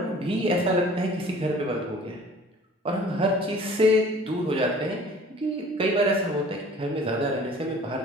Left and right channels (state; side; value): normal; both; correlation 0.48